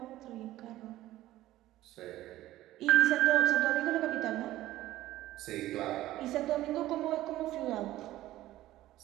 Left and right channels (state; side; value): quieter; left; 15.2 dB